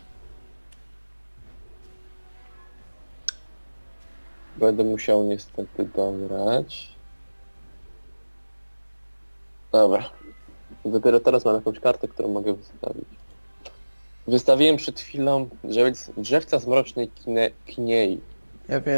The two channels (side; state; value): both; inverted; correlation -1.00